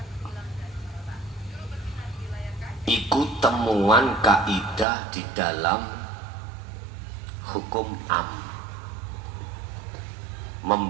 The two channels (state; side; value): drops out; left; at 4.9 s